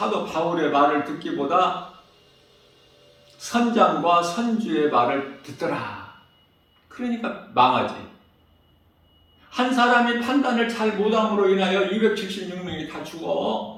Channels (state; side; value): identical; both; correlation 1.00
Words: 바울의 말을 듣기보다 선장과 선주의 말을 듣더라. 그러니까 망하지. 한 사람이 판단을 잘 못함으로 인하여 276명이 다